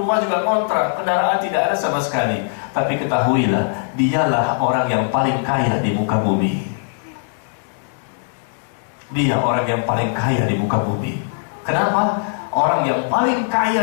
juga kontrak, kendaraan tidak ada sama sekali, tapi ketahuilah, dialah orang yang paling kaya di muka bumi. Dia orang yang paling kaya di muka bumi. Kenapa? Orang yang paling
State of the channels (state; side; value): silent; right; digital silence